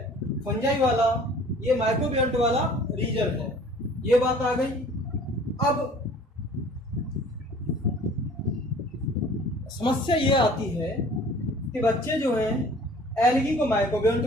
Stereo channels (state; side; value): normal; both; correlation 0.50